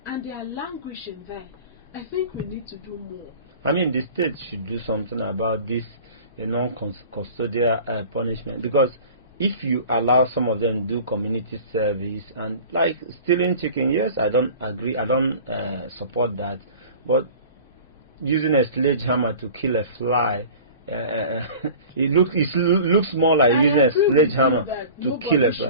and they are languishing there, I think we need to do more. I mean, the state should do something about this non-custodial punishment, because if you allow some of them to do community service and like stealing chicken, yes, I don't agree, I don't support that, but using a sledgehammer to kill a fly, it looks more like using a sledgehammer to kill a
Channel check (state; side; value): inverted; both; correlation -0.41